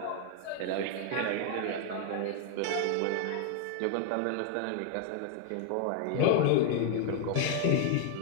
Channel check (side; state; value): both; different; correlation 0.00